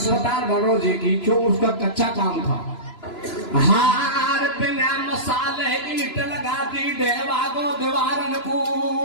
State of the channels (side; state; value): right; late; 3.0 ms